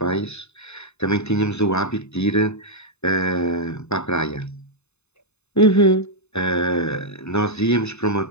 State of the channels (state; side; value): late; right; 0.81 ms